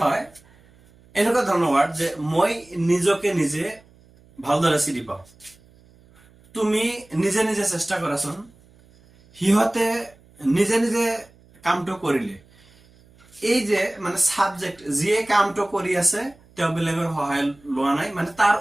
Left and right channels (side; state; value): right; noise; hum, 28 dB below the sound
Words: হয় এনেকুৱা ধৰণৰ ওয়াৰ্ড যে মই নিজকে নিজে ভালদৰে চিনি পাওঁ তুমি নিজে নিজে চেষ্টা কৰাচোন সিহঁতে নিজে নিজে কামটো কৰিলে এই যে মানে সাবজেক্ট যিয়ে কামটো কৰি আছে তেওঁ বেলেগৰ সহায় লোৱা নাই মানে তাৰ